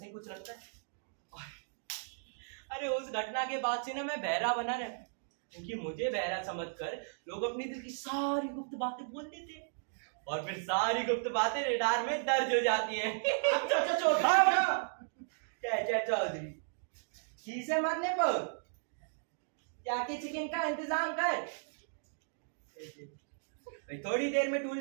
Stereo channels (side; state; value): left; silent; digital silence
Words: ही कुछ लगता है। अरे उस घटना के बाद से ना मैं बहरा बना रहा, क्योंकि मुझे बहरा समझकर लोग अपनी दिल की सारी गुप्त बातें बोल देते हैं और फिर सारी गुप्त बातें रेडार में दर्ज हो जाती हैं। चाचा चौधरी चीज़ें मरने पर जाके चिकन का इंतजाम कर। भाई थोड़ी देर में